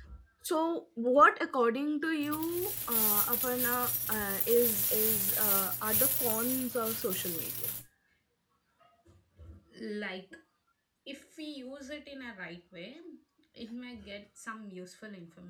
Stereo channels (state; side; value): identical; both; correlation 1.00